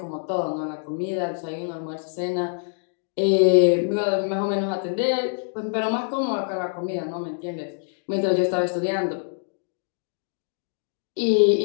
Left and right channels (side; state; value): right; silent; digital silence